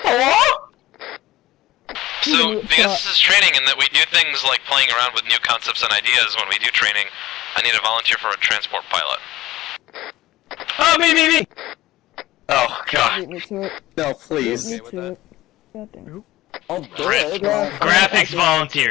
So, because this is training and that we do things like playing around with new concepts and ideas when we do training, I need a volunteer for a transport pilot. Oh, me! Oh, God. Beat me to it. No, please. Beat me to it. God damn. Oh, Graphics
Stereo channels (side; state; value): right; quieter; 16.4 dB